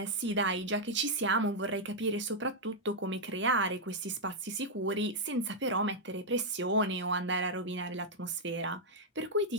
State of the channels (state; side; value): normal; both; correlation -0.04